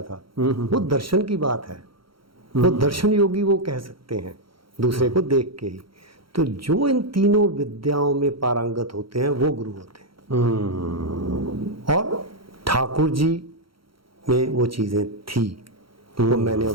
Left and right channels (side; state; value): left; late; 0.74 ms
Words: था, वो दर्शन की बात है, वो दर्शन योगी वो कह सकते हैं दूसरे को देख के ही। तो जो इन तीनों विद्याओं में पारंगत होते हैं वो गुरु होते हैं, और ठाकुर जी में वो चीज़ें थी, वो मैंने